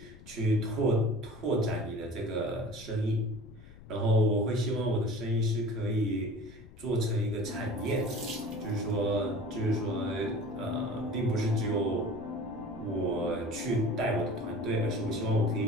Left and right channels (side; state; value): left; noise; rumble, 19 dB below the sound